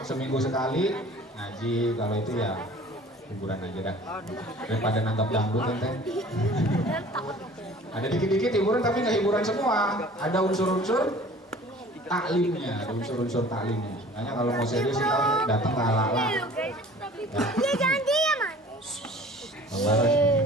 seminggu sekali ngaji. Kalau itu ya hiburan aja dah, daripada nangkap dangdut ente. Ada dikit-dikit hiburan tapi nggak hiburan semua. Ada unsur-unsur taklimnya, ada unsur-unsur taklimnya. Makanya kalau mau serius kita datang ke ala-ala. Dia jangan diam,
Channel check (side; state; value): both; normal; correlation 0.47